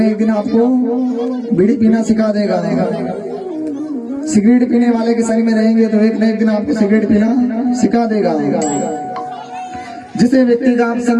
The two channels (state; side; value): identical; both; correlation 1.00